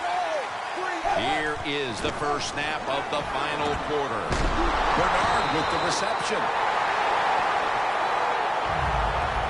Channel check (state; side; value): identical; both; correlation 1.00